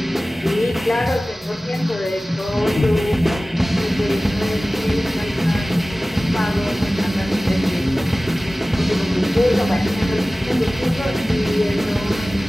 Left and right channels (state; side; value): normal; both; correlation 0.97